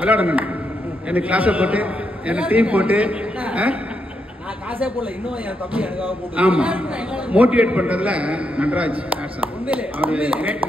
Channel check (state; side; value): normal; both; correlation 0.81